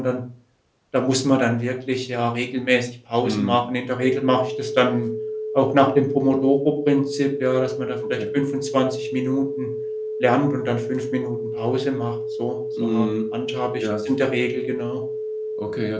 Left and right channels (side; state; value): both; identical; correlation 1.00